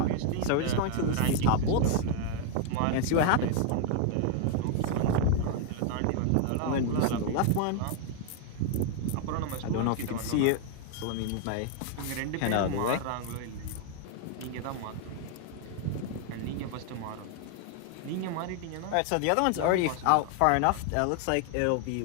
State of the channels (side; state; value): both; different; correlation 0.00